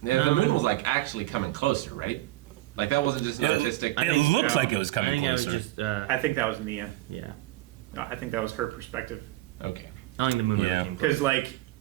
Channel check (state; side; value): quieter; left; 17.2 dB